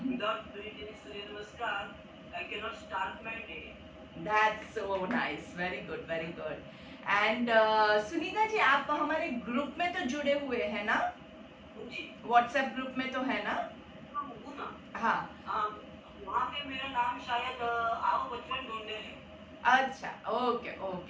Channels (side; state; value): both; identical; correlation 1.00